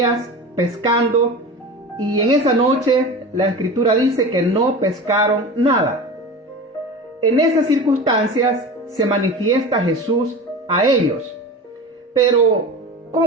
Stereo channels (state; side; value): normal; both; correlation 0.31